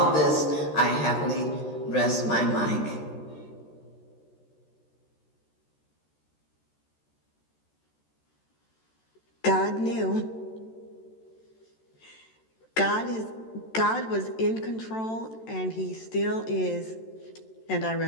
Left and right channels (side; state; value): right; late; 13 ms